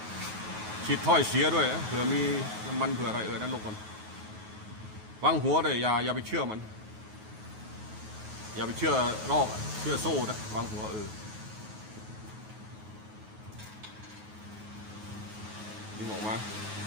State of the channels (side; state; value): left; late; 9.4 ms